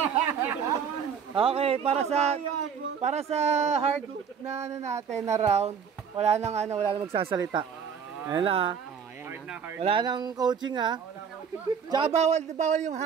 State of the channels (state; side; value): quieter; left; 7.0 dB